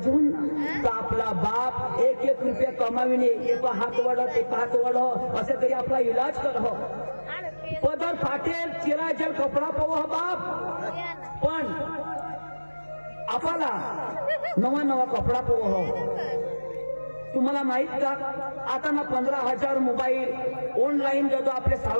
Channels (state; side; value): inverted; both; correlation -1.00